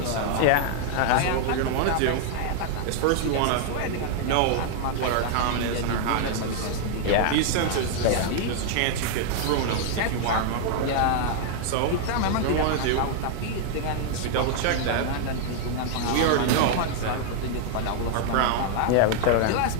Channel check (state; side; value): different; both; correlation 0.00